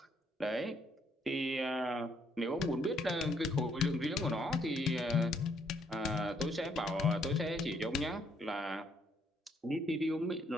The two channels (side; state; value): both; normal; correlation 0.70